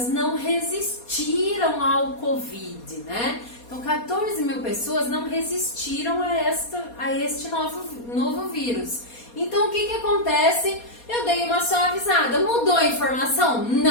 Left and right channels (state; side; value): late; right; 4.2 ms